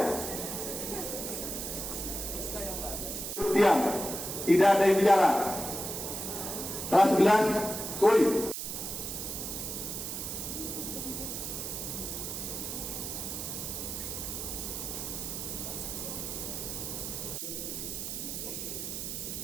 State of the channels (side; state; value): right; noise; hiss, 5 dB below the sound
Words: Diam, tidak ada yang bicara. Kelas 11, kuy.